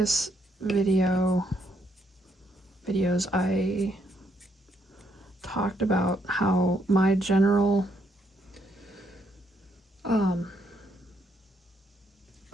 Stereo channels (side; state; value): both; normal; correlation 0.74